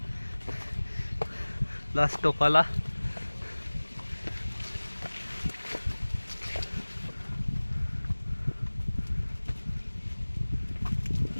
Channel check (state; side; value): inverted; both; correlation -1.00